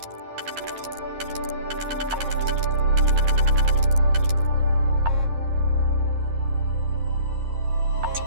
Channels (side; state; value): left; late; 11 ms